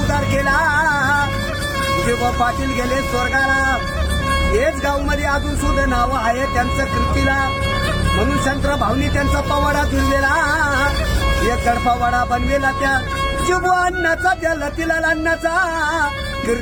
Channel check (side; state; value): both; identical; correlation 1.00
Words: केला, जेव्हा पाटील गेले स्वर्गाला, हेच गाव मध्ये अजून सुद्धा नाव आहे त्यांचं कीर्तीला, म्हणून शंकर भाऊनी त्यांचा पवाडा जुळलेला, एक गडपवाडा बनवेला त्या जिबू अण्णाचा, त्या लतीलाल अण्णाचा,